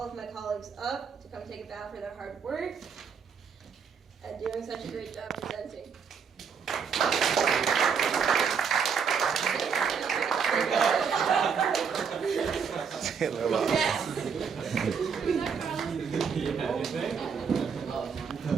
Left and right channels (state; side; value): quieter; left; 6.4 dB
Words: of my colleagues up to come take a bow for their hard work and doing such a great job presenting.